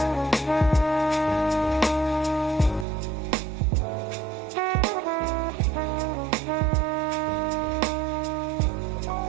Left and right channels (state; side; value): drops out; left; at 2.9 s